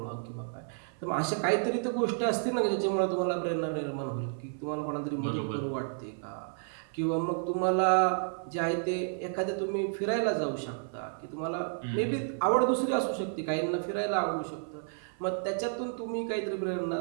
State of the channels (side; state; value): left; silent; 57 dB below the other